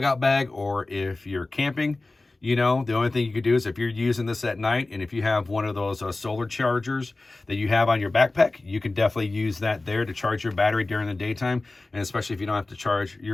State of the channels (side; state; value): right; quieter; 3.1 dB